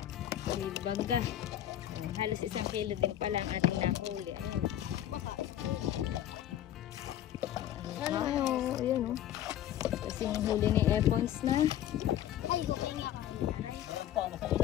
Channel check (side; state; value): right; quieter; 11.8 dB